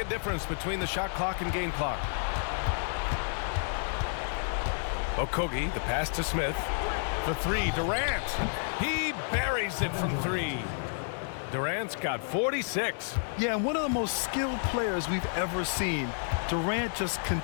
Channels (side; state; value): right; silent; 58 dB below the other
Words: difference between the shot clock and game clock. Okogie, the pass to Smith. The three, Durant. He buries it from three. Durant's got 46. Yeah, and one of the most skilled players we've ever seen. Durant just